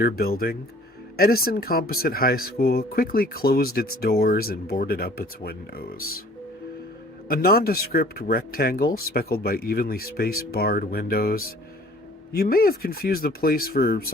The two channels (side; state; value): both; normal; correlation 0.52